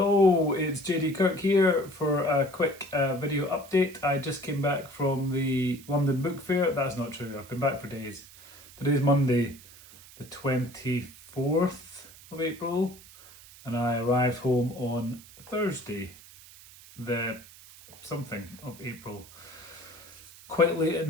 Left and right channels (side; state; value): right; noise; hiss, 20 dB below the sound